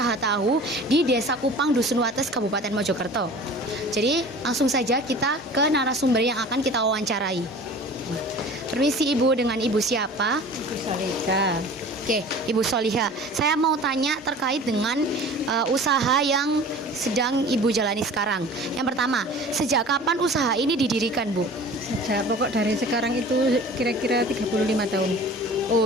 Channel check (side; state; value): both; normal; correlation 0.42